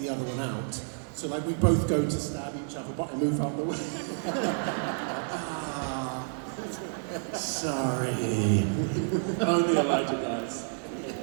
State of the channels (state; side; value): silent; left; digital silence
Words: other one out. So like we both go to stab each other, but I move out the way. Sorry. Only Elijah does.